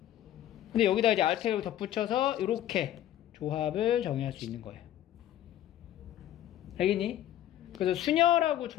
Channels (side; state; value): right; quieter; 12.2 dB